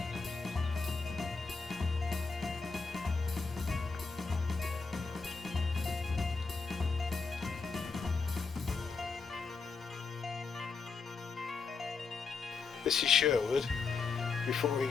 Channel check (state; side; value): quieter; right; 4.7 dB